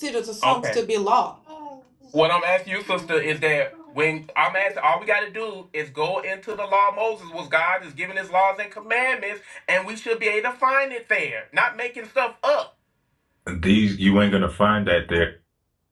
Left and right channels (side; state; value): both; identical; correlation 1.00